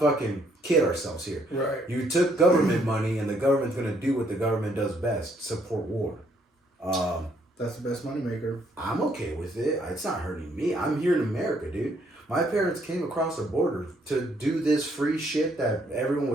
kid ourselves here. Right. You took government money, and the government's gonna do what the government does best: support war. That's the best moneymaker. I'm okay with it. It's not hurting me. I'm here in America, dude. My parents came across the border to do this free shit that everyone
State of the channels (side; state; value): both; normal; correlation 0.68